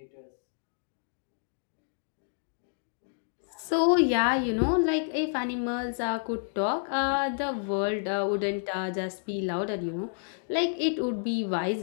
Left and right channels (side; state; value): right; silent; digital silence